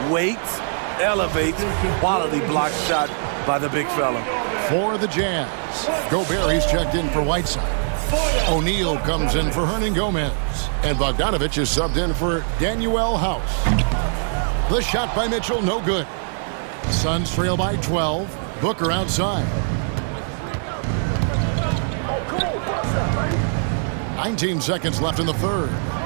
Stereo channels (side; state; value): left; silent; digital silence